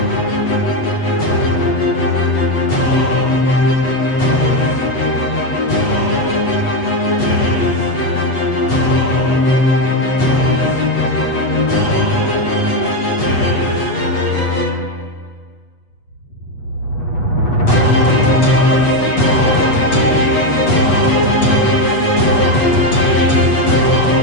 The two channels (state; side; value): late; right; 8.2 ms